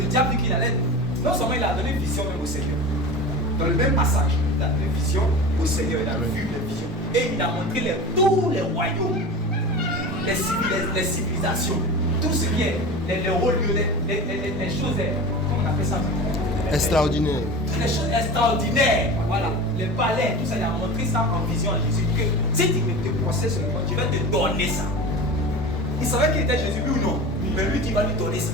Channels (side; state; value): both; normal; correlation 0.32